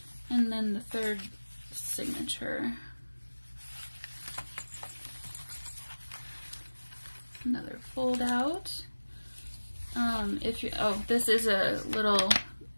And then the third signature. Another fold out. If you, oh, this is a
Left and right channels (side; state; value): both; inverted; correlation -1.00